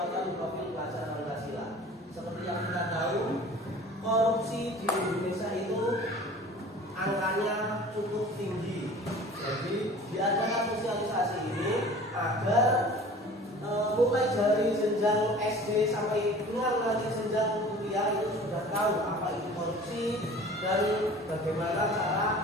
profil pelajar Pancasila. Seperti yang kita tahu, korupsi di Indonesia itu angkanya cukup tinggi. Jadi diadakan sosialisasi ini agar mulai dari jenjang SD sampai dengan nanti jenjang kuliah itu sudah tahu apa itu korupsi dan bagaimana cara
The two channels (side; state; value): both; normal; correlation 0.44